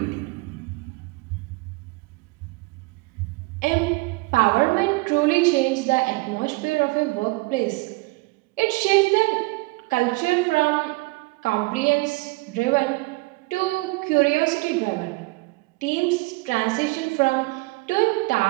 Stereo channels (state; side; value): quieter; left; 25.0 dB